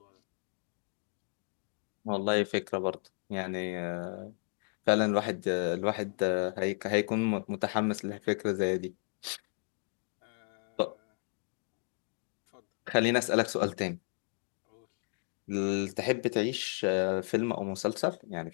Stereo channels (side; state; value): right; silent; 55 dB below the other